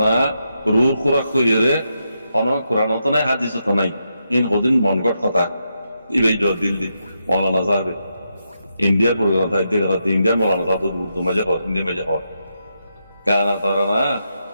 রুর খুরাক কইরে কোনো কোরআন তো নাই হাদিস তো নাই ইন হদিন মনগট কথা ইবে জবাব দিল দি মৌলানা সাহেব ইন্ডিয়ার প্রোগ্রাম তাই দেখতে ইন্ডিয়ার মৌলানা সাহেব তো মজা হয় ইন্ডিয়া মজা হয় গানা তারানা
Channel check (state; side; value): inverted; both; correlation -0.84